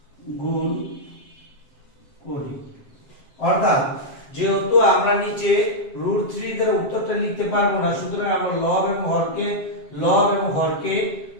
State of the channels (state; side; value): late; right; 7.6 ms